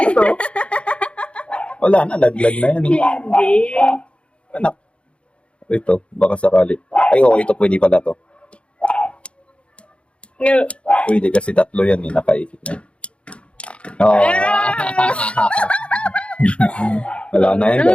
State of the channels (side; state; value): right; late; 0.059 ms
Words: Wala na, laglag na yan. Hindi. Anak. Ito, baka sakali. Ay, ito pwede pala to. Pwede kasi tatlo yan nakaikit na yan. Wala na yan,